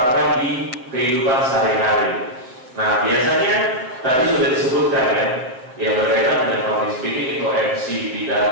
di kehidupan sehari-hari. Nah, biasanya tadi sudah disebutkan ya, yang berkaitan dengan public speaking itu MC,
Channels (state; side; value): late; left; 7.7 ms